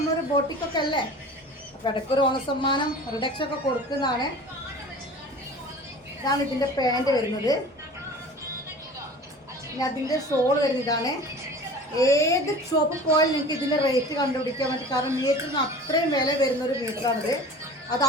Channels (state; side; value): normal; both; correlation 0.40